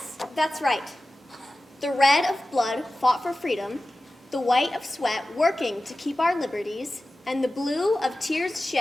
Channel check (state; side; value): normal; both; correlation 0.95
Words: that's right. The red of blood fought for freedom, the white of sweat working to keep our liberties, and the blue of tears